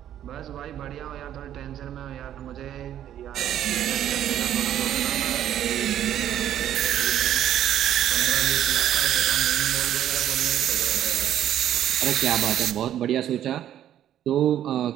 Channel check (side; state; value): left; quieter; 11.1 dB